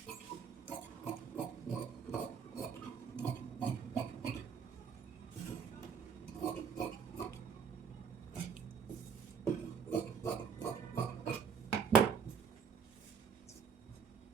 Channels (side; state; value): left; quieter; 6.6 dB